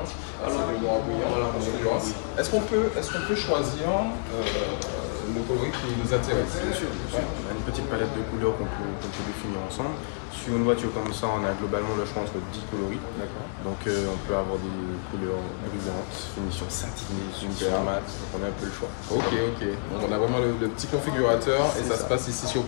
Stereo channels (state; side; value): silent; right; digital silence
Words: alors du noir brillant, voilà, est-ce qu'on peut choisir le coloris qui nous intéresse? Bien sûr. Ouais. On a une petite palette de couleurs qu'on peut définir ensemble. Sur une voiture comme ça, on a globalement le choix entre 10 coloris. D'accord. Donc on peut avoir des couleurs brillantes, finition satinée, super mat, donc on a un peu le choix. Ok. Donc on a vraiment le petit configurateur et ça se passe ici sur